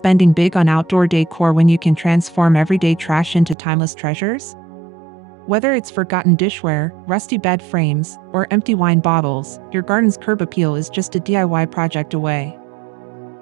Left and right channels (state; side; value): drops out; left; at 3.6 s